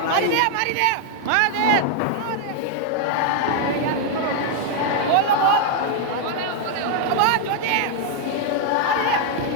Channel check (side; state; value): both; different; correlation 0.00